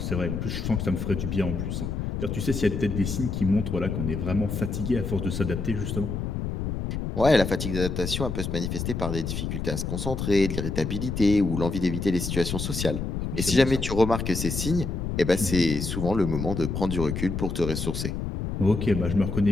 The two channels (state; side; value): noise; left; rumble, 3 dB below the sound